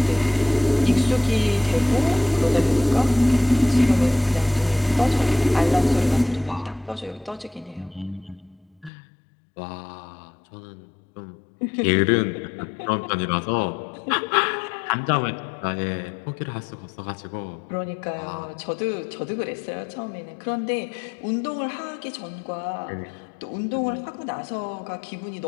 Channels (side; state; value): right; drops out; at 8.9 s